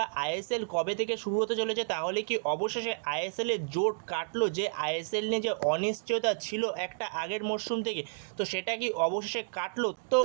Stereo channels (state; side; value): silent; left; digital silence